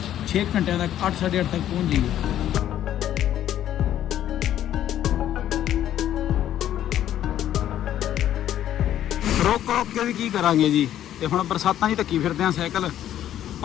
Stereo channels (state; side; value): quieter; right; 11.5 dB